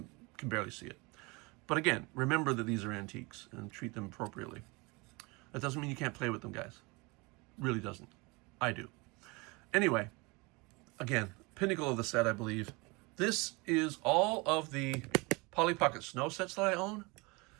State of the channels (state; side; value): quieter; left; 26.4 dB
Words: can barely see it. But again, remember that these are antiques and treat them appropriately. That doesn't mean you can't play with them, guys. Really doesn't. I do. Anyway, again, pinnacle of the set, I believe. This is all of the Polly Pocket Snow sets that I own.